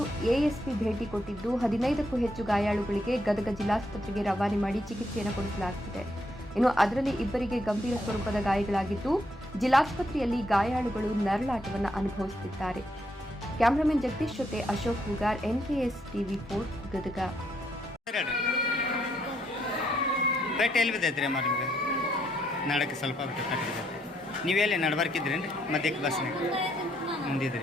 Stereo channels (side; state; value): both; normal; correlation 0.74